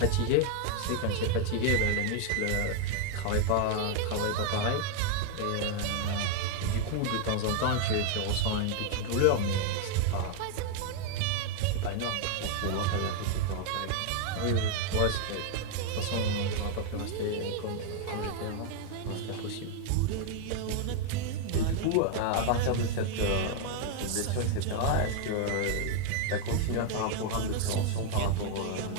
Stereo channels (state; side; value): different; both; correlation 0.00